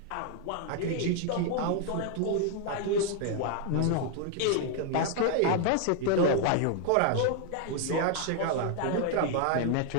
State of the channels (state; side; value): different; both; correlation 0.00